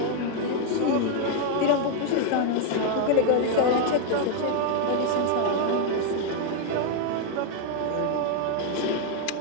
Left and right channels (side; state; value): both; different; correlation 0.00